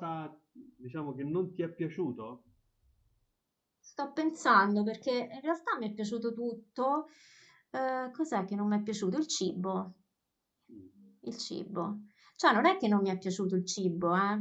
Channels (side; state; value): both; identical; correlation 1.00